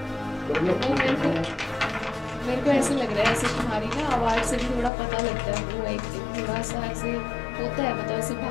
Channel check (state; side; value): drops out; right; at 4.9 s